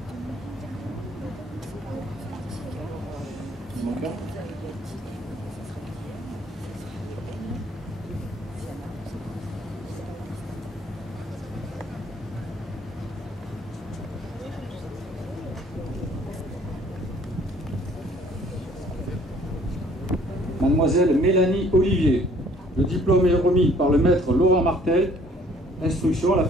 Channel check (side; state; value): both; normal; correlation 0.58